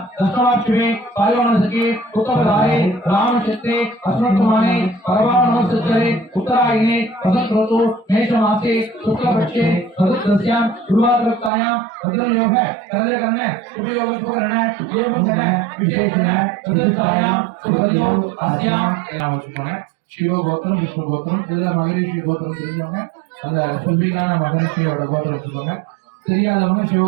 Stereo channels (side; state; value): left; drops out; at 11.5 s